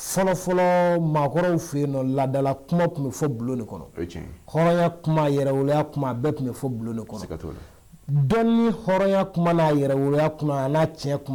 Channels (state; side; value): identical; both; correlation 1.00